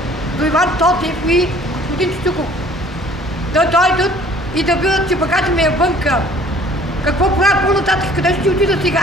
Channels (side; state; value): both; normal; correlation 0.53